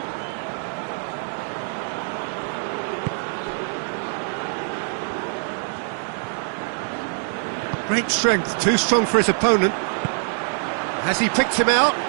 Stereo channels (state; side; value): silent; left; 56 dB below the other